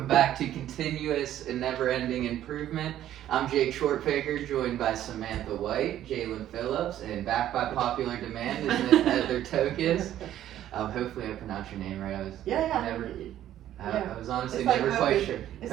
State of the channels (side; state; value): left; quieter; 12.1 dB